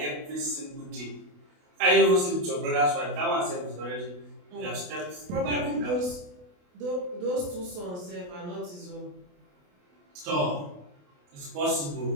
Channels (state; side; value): late; left; 28 ms